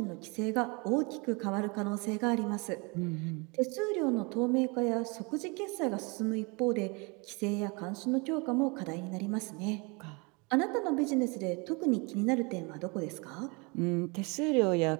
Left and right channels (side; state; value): left; quieter; 29.5 dB